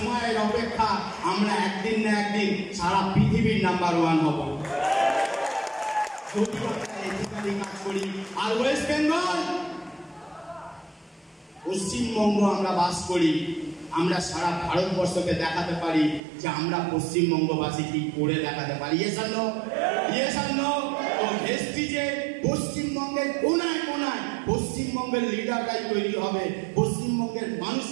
অপেক্ষা, আমরা একদিন না একদিন সারা পৃথিবীর নাম্বার 1 হব যদি আমরা এথিক্যালি কাজ করি। আর ওয়েস্ট বেঙ্গল, পশ্চিমবঙ্গ আমরা বাস করি, আমরা সারা ভারতবর্ষকে দেখাতে পারি যে আমরা পশ্চিমবঙ্গবাসী কি করে দেখাতে পারি। Yes or no? Yes or no? তো ভেস্টিজে পশ্চিমবঙ্গের কোনায় কোনায় পশ্চিমবঙ্গের লিডাররাই তৈরি হবে। পশ্চিমবঙ্গের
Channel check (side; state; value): left; drops out; at 16.2 s